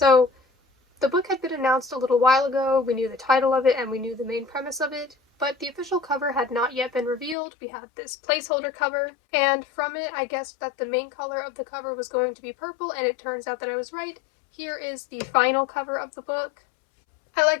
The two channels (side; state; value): right; drops out; at 7.4 s